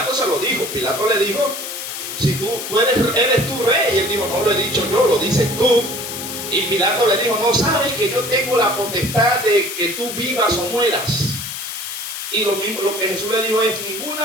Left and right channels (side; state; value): left; noise; hiss, 7 dB below the sound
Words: se lo dijo. Pilato le dijo, si tú eres tu rey. Y él dijo, no lo he dicho yo, lo dices tú. Y Pilato le dijo, no sabes que yo tengo la potestad de que tú vivas o mueras. Y lo mismo, lo que Jesús le dijo es,